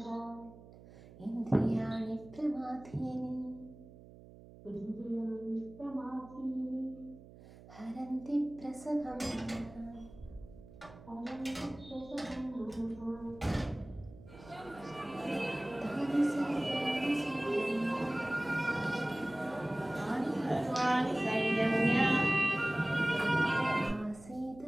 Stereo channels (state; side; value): noise; right; hum, 19 dB below the sound